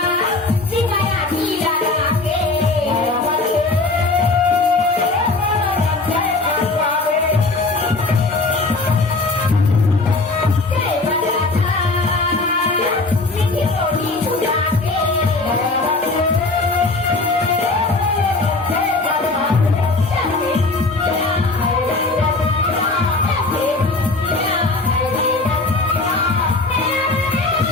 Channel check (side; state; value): right; quieter; 3.3 dB